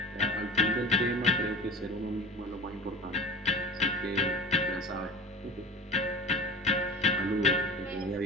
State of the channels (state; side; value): normal; both; correlation 0.36